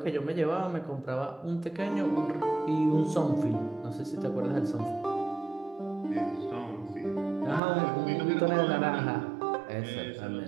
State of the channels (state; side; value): drops out; left; at 7.6 s